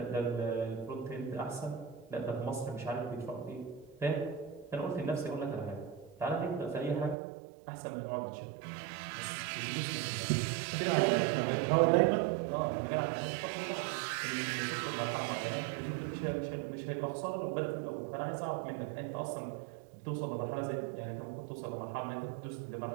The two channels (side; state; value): left; drops out; at 7.2 s